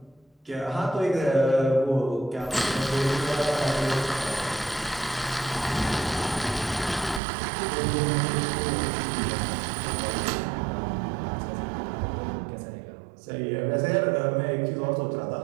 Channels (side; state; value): left; drops out; at 7.2 s